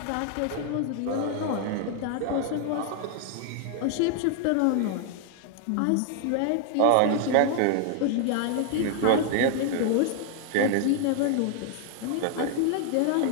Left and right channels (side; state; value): both; different; correlation 0.00